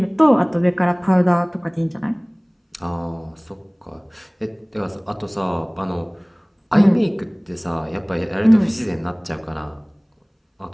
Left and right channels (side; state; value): both; identical; correlation 1.00